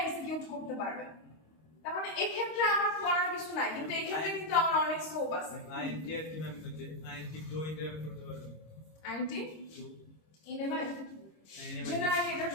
করতে পারবে। তার মানে এই ক্ষেত্রে আমার করার কিছু নাই, কিন্তু এই ক্ষেত্রে কিন্তু আমার অনেক স্কোপ আছে। INTR কি ম্যাম করতে? INT2 ইন্টারাপ্ট করতে পারবে। INT2 ইনেভাই জেনারেলি এটার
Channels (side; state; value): right; late; 26 ms